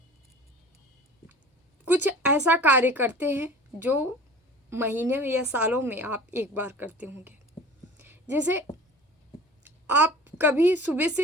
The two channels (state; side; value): normal; both; correlation 0.42